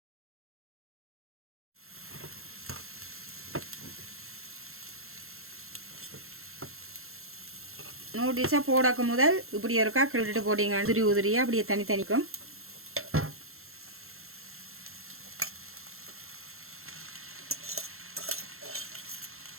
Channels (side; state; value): left; late; 0.62 ms